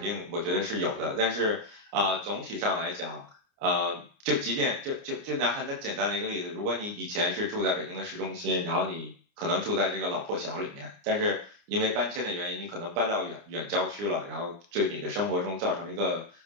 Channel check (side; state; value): left; late; 29 ms